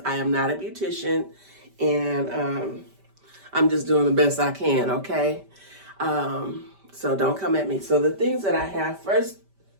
I am not a beautician, and I'm just doing the best I can, okay? So don't come at me. So the things that I have, first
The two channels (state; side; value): late; left; 5.1 ms